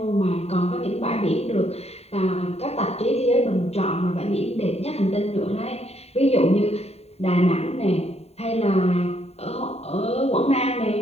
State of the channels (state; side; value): late; right; 0.30 ms